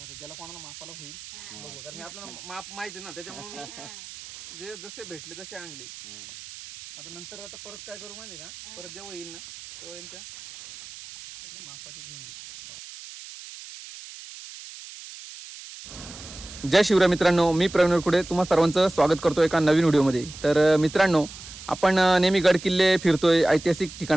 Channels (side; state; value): right; noise; hiss, 15 dB below the sound